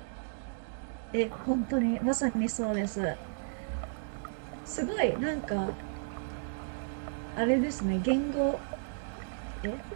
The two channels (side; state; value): left; silent; digital silence